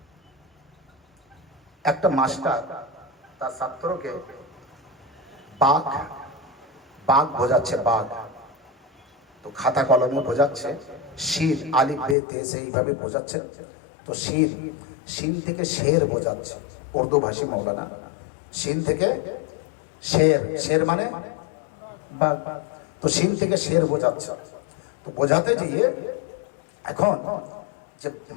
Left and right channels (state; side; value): drops out; right; at 12.2 s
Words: একটা মাস্টার তার ছাত্রকে বাঘ বাঘ বোঝাচ্ছে, বাঘ, তো খাতা কলমে বোঝাচ্ছে, শির আলিফ বে তে সে এইভাবে বোঝাচ্ছে, তো শির শিন থেকে শের বোঝাচ্ছে, উর্দু ভাষী মৌলানা, শিন থেকে শের, শের মানে বাঘ, তো শিন থেকে শের বোঝাচ্ছে। তো বোঝাতে গিয়ে এখন যে